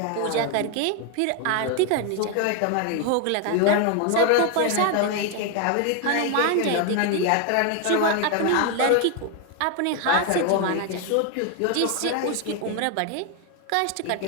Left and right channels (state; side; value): different; both; correlation 0.01